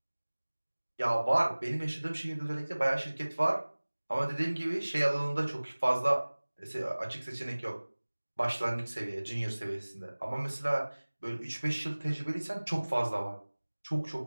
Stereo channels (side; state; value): both; inverted; correlation -1.00